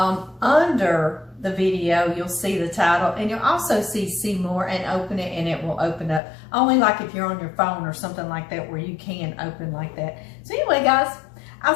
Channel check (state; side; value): drops out; right; at 6.2 s